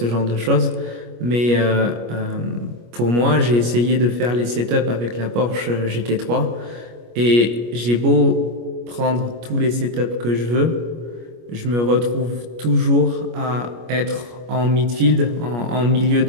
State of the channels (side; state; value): left; late; 25 ms